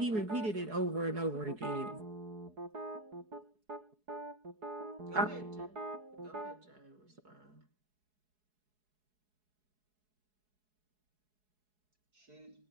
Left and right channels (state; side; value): late; left; 4.7 ms